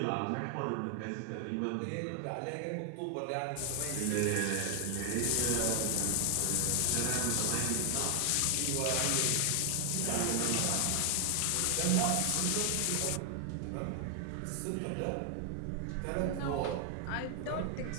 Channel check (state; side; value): different; both; correlation 0.00